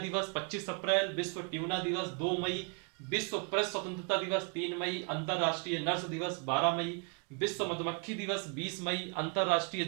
25 अप्रैल, विश्व ट्यूना दिवस 2 मई, विश्व प्रेस स्वतंत्रता दिवस 3 मई, अंतरराष्ट्रीय नर्स दिवस 12 मई, विश्व मधुमक्खी दिवस 20 मई, अंतरराष्ट्रीय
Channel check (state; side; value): quieter; left; 38.9 dB